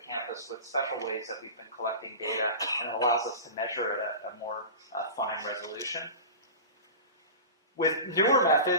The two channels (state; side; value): inverted; both; correlation -0.31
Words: with special ways that we've been collecting data, and it allows us to measure at a more fine resolution. With newer